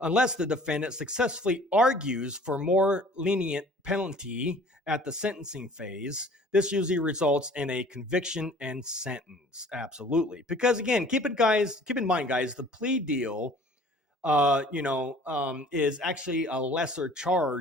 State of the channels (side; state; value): both; normal; correlation 0.50